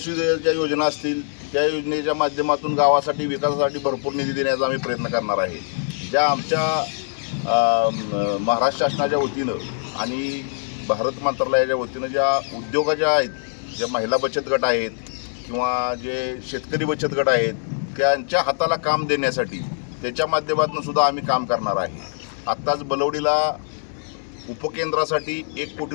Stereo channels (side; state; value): right; silent; digital silence